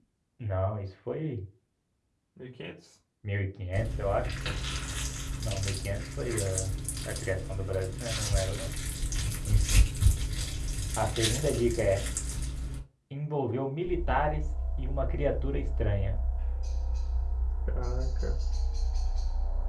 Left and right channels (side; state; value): both; identical; correlation 1.00